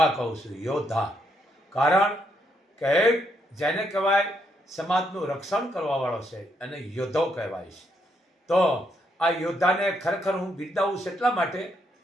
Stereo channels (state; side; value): normal; both; correlation 0.76